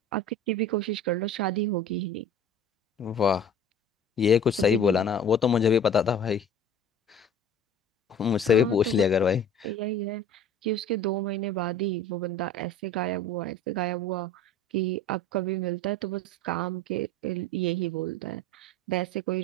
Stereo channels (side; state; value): both; normal; correlation 0.43